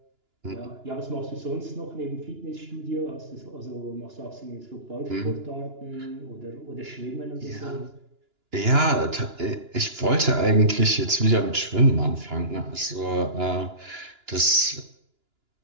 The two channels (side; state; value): left; late; 2.9 ms